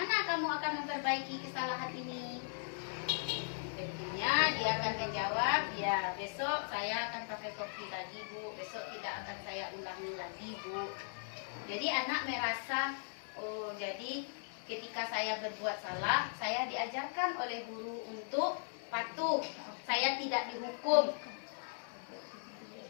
kamu akan memperbaiki kesalahan ini? Tentunya dia akan menjawab, ya besok saya akan pakai topi lagi Bu, besok tidak akan saya ulangi lagi Bu. Jadi anak merasa, oh jadi ketika saya berbuat salah, saya diajarkan oleh guru untuk patuh, saya tidak dihukum.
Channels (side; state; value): right; silent; digital silence